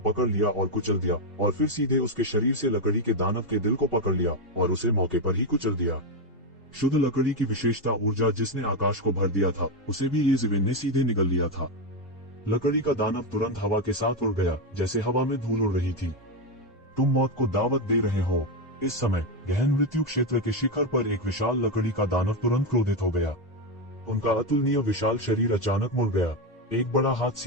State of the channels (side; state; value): both; normal; correlation 0.08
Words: लिया और कुचल दिया, और फिर सीधे उसके शरीर से लकड़ी के दानव के दिल को पकड़ लिया और उसे मौके पर ही कुचल दिया। शुद्ध लकड़ी की विशेषता ऊर्जा जिसने आकाश को भर दिया था, उसे भी येशिवेन ने सीधे निगल लिया था। लकड़ी का दानव तुरंत हवा के साथ उड़ गया, जैसे हवा में धूल उड़ रही थी। तुम मौत को दावत दे रहे हो। इस समय गहन मृत्यु क्षेत्र के शिखर पर एक विशाल लकड़ी का दानव तुरंत क्रोधित हो गया। उनका अतुलनीय विशाल शरीर अचानक मुड़ गया। एक बड़ा हाथ